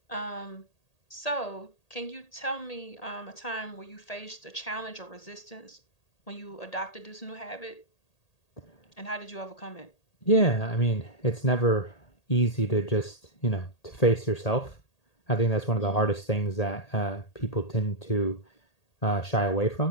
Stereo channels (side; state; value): right; late; 1.8 ms